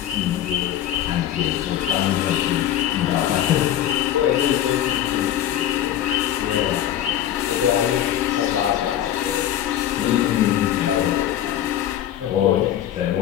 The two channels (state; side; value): quieter; right; 11.5 dB